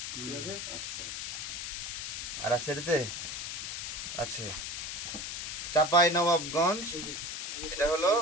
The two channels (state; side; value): noise; left; hiss, 5 dB below the sound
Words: আর আছে এটাতে আছে চাপাই নবাবগঞ্জ। এটা হলো